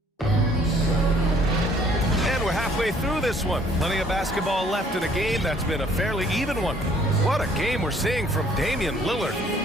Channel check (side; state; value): both; normal; correlation 0.60